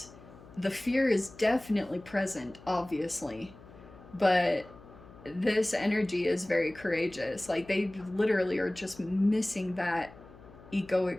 The fear is definitely present, obviously. But this energy is very courageous. Like, they literally are just missing that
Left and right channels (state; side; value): noise; left; hum, 20 dB below the sound